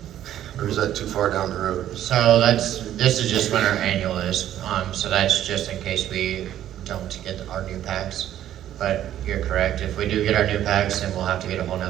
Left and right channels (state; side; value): quieter; left; 11.8 dB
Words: Or is that too far down the road? So this is just when our annual is, so that's just in case we don't get our new packs. But you're correct, if we do get our new packs, then we'll have to get a whole